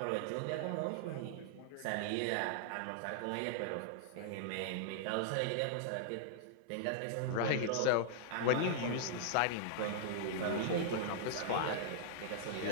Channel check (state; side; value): different; both; correlation -0.01